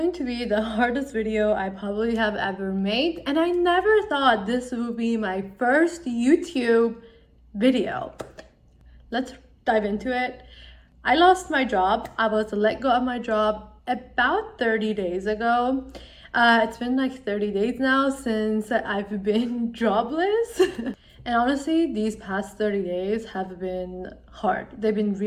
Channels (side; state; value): both; identical; correlation 1.00